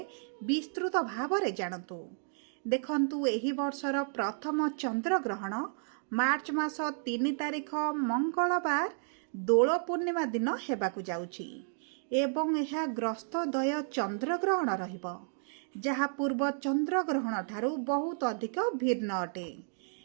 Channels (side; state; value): left; silent; digital silence